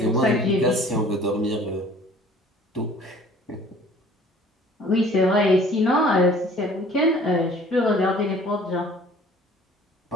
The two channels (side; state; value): both; normal; correlation 0.51